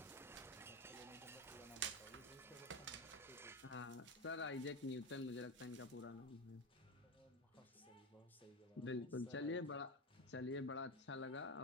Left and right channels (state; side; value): normal; both; correlation 0.16